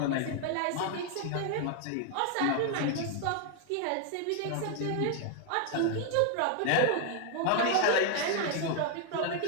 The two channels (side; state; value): both; different; correlation 0.00